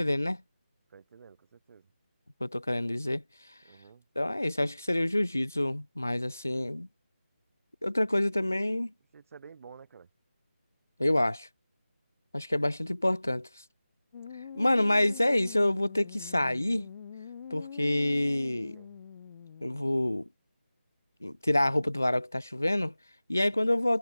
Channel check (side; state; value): both; inverted; correlation -0.98